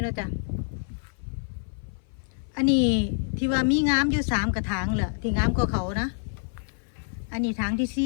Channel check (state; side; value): silent; right; 56 dB below the other